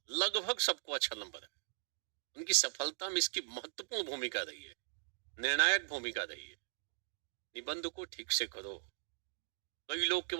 लगभग सबको अच्छा नंबर है। उनकी सफलता में इसकी महत्वपूर्ण भूमिका रही है, निर्णायक भूमिका रही है। निबंध को ठीक से करो। कई लोग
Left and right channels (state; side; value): silent; left; digital silence